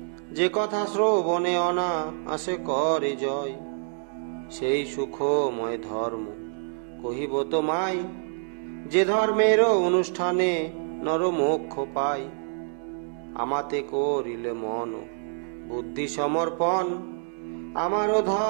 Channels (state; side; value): silent; left; digital silence